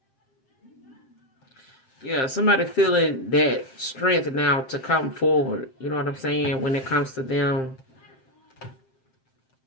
Yeah, somebody feeling that strength now to come forward. You know what I'm saying? When it comes to them,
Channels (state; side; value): late; right; 7.6 ms